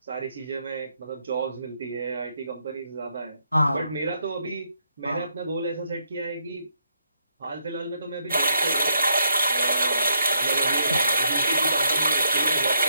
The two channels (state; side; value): inverted; both; correlation -0.76